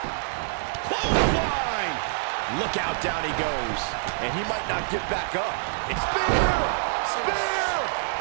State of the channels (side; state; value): left; silent; digital silence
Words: Clothesline! Look out, down he goes. And he might not get back up. It's spear! Spear!